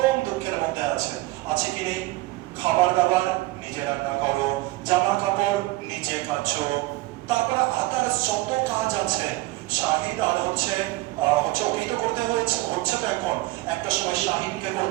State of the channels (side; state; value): left; quieter; 20.0 dB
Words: দুঃখের মধ্যে আছে কি নেই, খাবার দাবার নিজে রান্না করো, জামা কাপড় নিজে কাচো, তারপরে আদার যত কাজ আছে শাহিদ আর হচ্ছে ওকেই তো করতে হচ্ছে তো এখন একটা সময় শাহিদকে